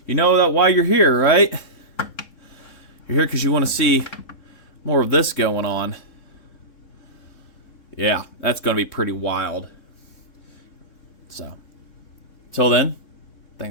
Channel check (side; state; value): right; late; 3.6 ms